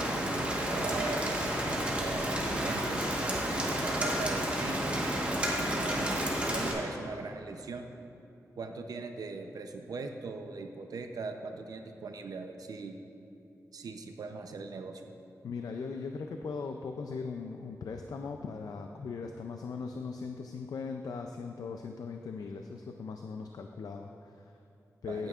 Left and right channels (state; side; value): normal; both; correlation 0.66